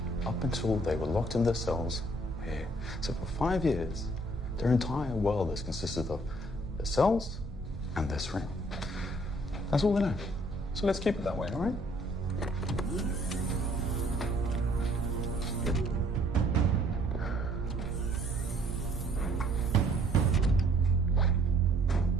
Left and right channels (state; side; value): normal; both; correlation 0.62